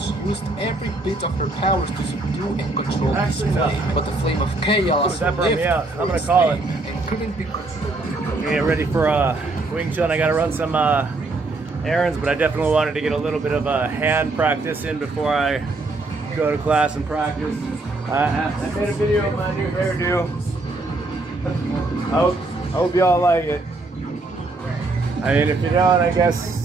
used every bit of her powers to subdue and control this flame, but the Flame of Chaos lived I'm gonna call it and couldn't be controlled. Get ready for Wing Chun. I gotta run some errands, but I definitely wanted to get a little bit of hand practice in before I go to class and practice. I made a video of my new hairdo. I hope y'all like it. I mean, if you don't, I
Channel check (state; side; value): quieter; left; 3.1 dB